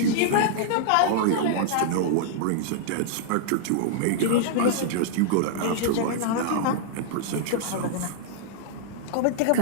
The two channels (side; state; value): both; different; correlation -0.01